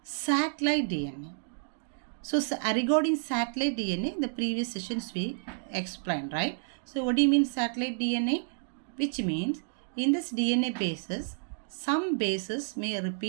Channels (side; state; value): left; silent; digital silence